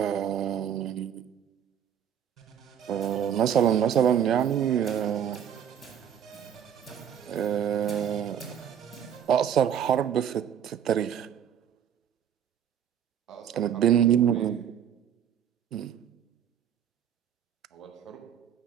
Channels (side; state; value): left; quieter; 8.9 dB